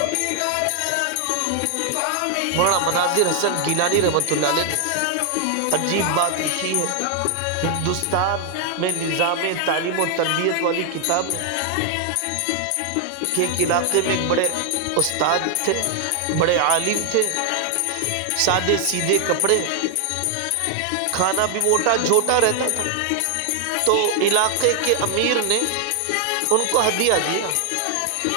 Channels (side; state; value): both; different; correlation 0.00